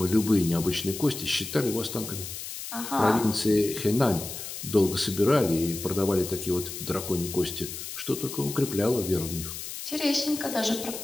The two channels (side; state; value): left; noise; hiss, 8 dB below the sound